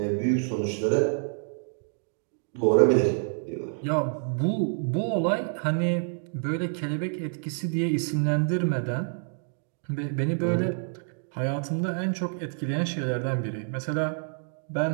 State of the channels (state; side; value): silent; left; 60 dB below the other